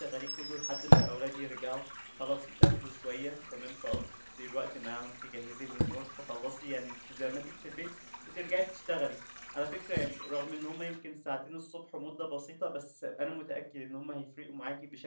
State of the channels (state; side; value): inverted; both; correlation -1.00